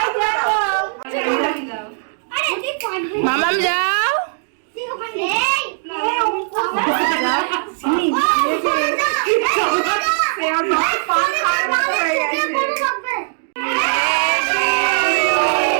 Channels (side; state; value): left; silent; digital silence